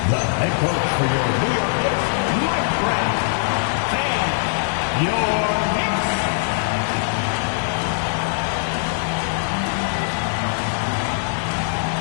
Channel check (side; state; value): right; silent; 65 dB below the other